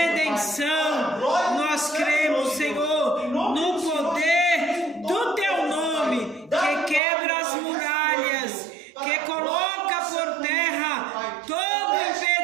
Nós cremos, Senhor, no poder do Teu nome, que quebra as muralhas, que coloca por terra todo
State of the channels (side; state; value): left; drops out; at 7.0 s